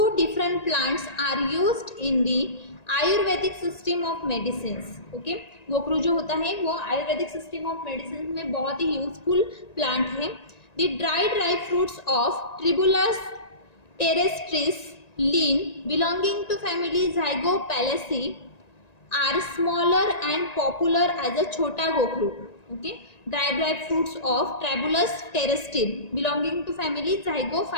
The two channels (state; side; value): late; right; 1.9 ms